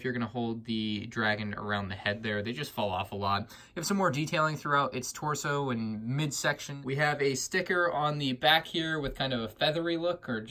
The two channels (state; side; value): identical; both; correlation 1.00